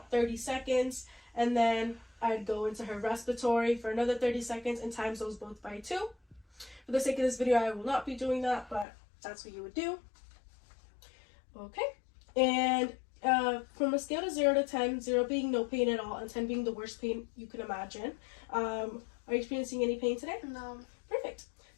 30 seconds, and then I'd go into her respiratory for another 30 seconds and times those both by 2. For the sake of this video, I will not be doing that, but that's what you would do. Okay. And from a scale of 0 to 10, 0 being no pain at all and 10 being the worst pain you can imagine, are you experiencing any pain today? No. Perfect.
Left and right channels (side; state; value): right; drops out; at 8.8 s